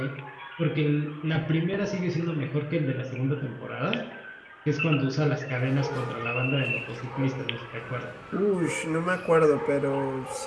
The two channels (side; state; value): both; identical; correlation 1.00